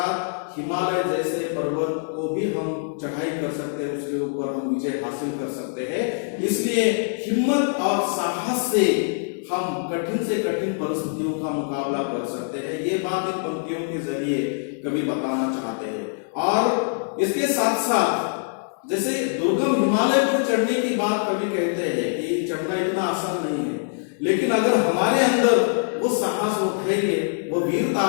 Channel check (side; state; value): right; silent; digital silence